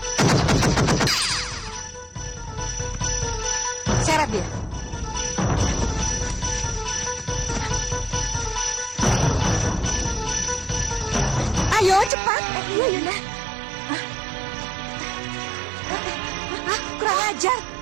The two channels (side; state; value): left; drops out; at 12.1 s